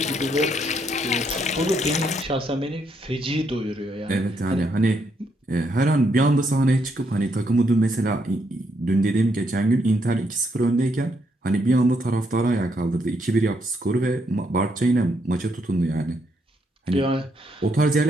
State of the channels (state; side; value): normal; both; correlation 0.75